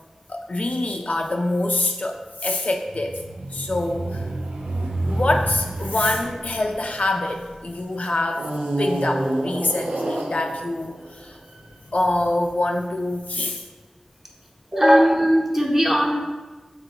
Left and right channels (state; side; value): normal; both; correlation 0.92